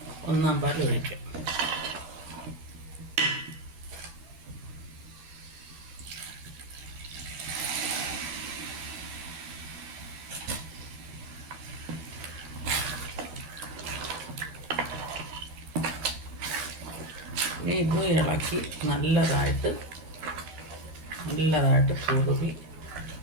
1-ാം പാൽ ഒഴിക്കാം. ഇനി ഇത് ഇളക്കി നല്ലതായിട്ട് കുറുകി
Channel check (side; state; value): left; late; 13 ms